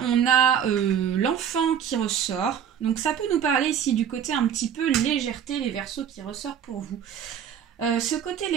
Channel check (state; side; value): quieter; left; 8.7 dB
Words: on a l'enfant qui ressort. Donc ça peut nous parler ici du côté un petit peu légèreté, les Verseaux, qui ressort pour vous. Ce côté